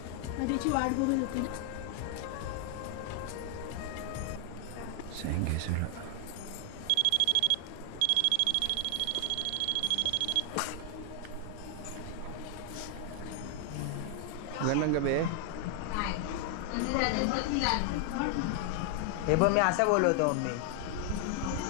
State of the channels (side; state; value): both; different; correlation 0.00